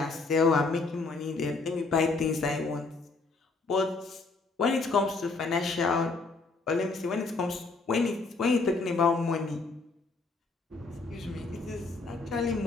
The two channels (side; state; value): right; quieter; 3.9 dB